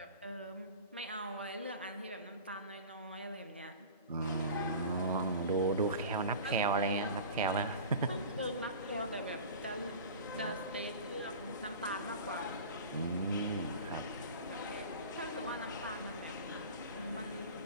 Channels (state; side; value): inverted; both; correlation -0.36